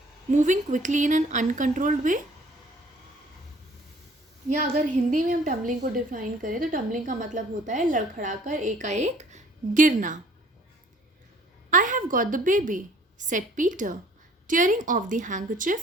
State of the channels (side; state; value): both; normal; correlation 0.55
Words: moving quickly in an uncontrolled way. या अगर हिंदी में हम टम्बलिंग को डिफाइन करें तो टम्बलिंग का मतलब होता है लड़खड़ाकर एकाएक गिरना. "I have got the baby," said Peter, tearing off the